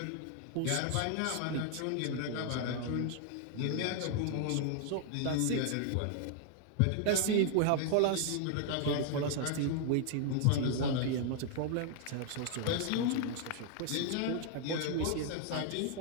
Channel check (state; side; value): different; both; correlation 0.00